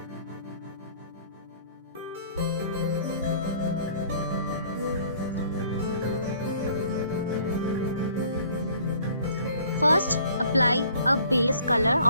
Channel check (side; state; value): both; inverted; correlation -0.56